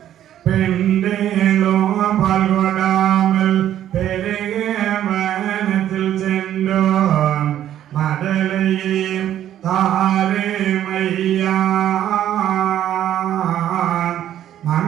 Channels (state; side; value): quieter; left; 11.4 dB